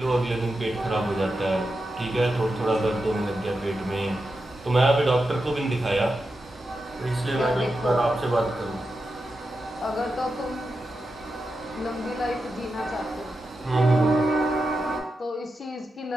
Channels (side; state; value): both; normal; correlation 0.89